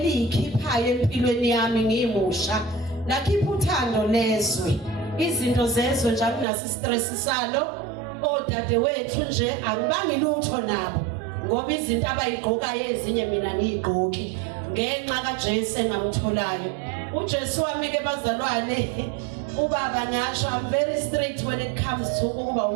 empilweni yami ngimusha. Lakhipha uthando lezwe. Izinto zezwe nje akunasi stress salo. Odade wethu nje angibangi lutho nabo. Ngoba izinto abayigqokayo ezinye mina ngiyigqoki ngenxa kaJesu engamtholayo. uJesu wami ke bazalwane ubaba ngasho I'm very strict when it comes to ukuba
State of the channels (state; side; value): drops out; left; at 6.5 s